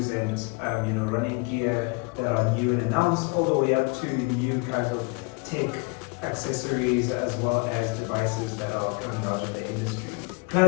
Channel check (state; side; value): quieter; right; 29.9 dB